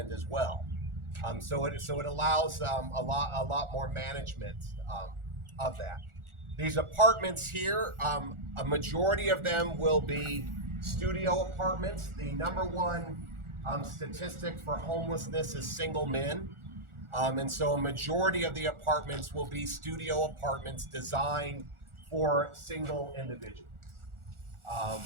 as well. So it allows a lot more management of that. These apartments here, a majority of them will be studio apartments. The number one statistic for homelessness is single men. And so a majority of the apartments will be studio apartments designed for single individuals.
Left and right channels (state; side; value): late; left; 1.4 ms